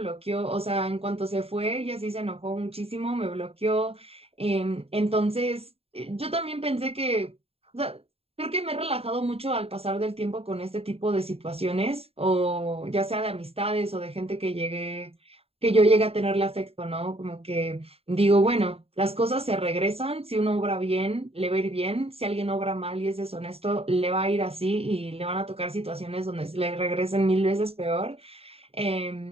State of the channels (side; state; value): left; late; 0.29 ms